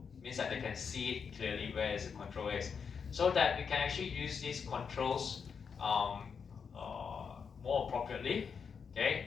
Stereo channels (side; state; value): right; quieter; 6.2 dB